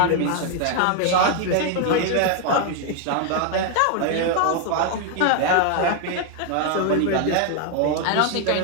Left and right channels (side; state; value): both; different; correlation 0.00